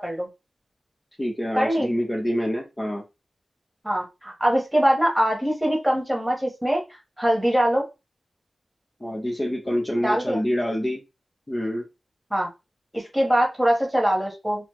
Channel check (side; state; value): both; normal; correlation 0.98